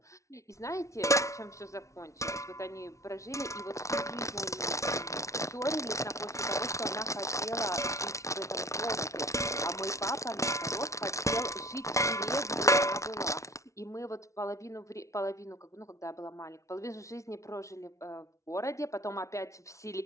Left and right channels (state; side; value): late; right; 0.14 ms